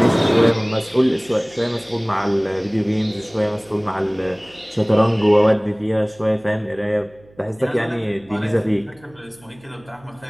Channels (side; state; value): right; noise; hum, 28 dB below the sound